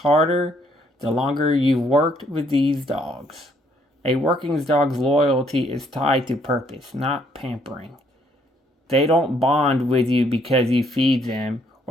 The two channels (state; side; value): normal; both; correlation 0.68